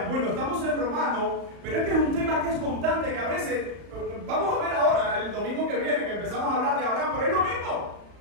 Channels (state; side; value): late; left; 35 ms